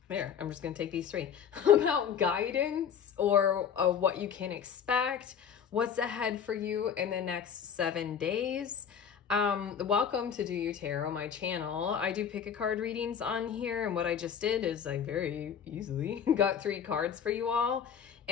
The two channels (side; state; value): right; quieter; 7.8 dB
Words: I'm just going to take these three, about guidance or what you can expect, what's ahead for you in the next 7 days. Welcome to Do You Tarot, my channel. I do pick a card readings on here, and what I just did is I very easily got 3 cards for you all.